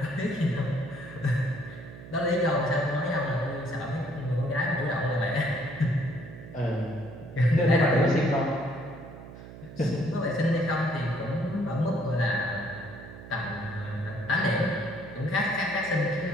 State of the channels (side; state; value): right; noise; hum, 15 dB below the sound